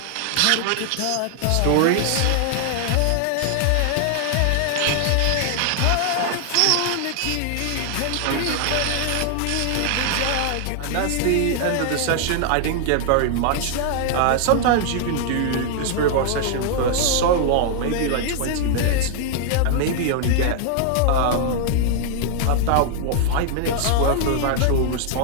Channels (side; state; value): both; different; correlation 0.00